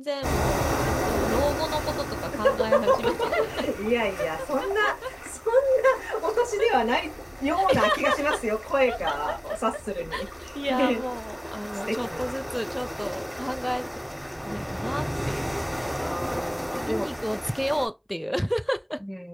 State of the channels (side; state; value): both; identical; correlation 1.00